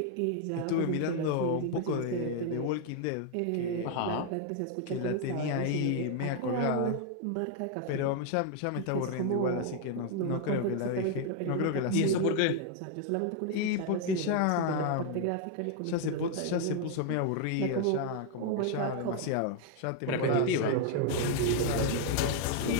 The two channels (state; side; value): different; both; correlation 0.00